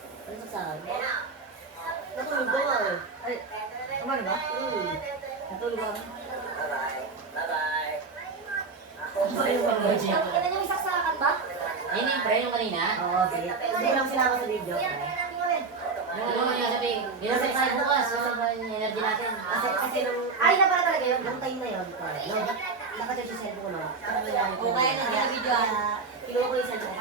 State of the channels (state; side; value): quieter; left; 4.4 dB